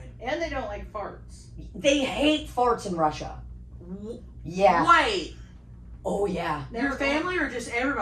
And they don't like farts. They hate farts in Russia. Yeah. Wait. Oh, yeah. Your family or just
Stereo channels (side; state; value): both; identical; correlation 1.00